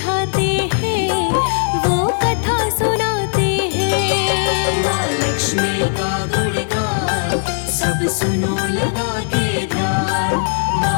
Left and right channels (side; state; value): right; silent; 67 dB below the other